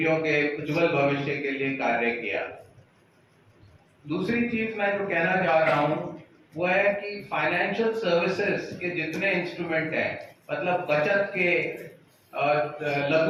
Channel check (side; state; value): both; identical; correlation 1.00